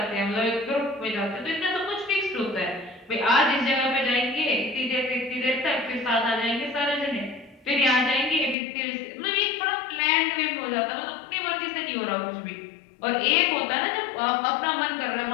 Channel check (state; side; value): drops out; right; at 8.6 s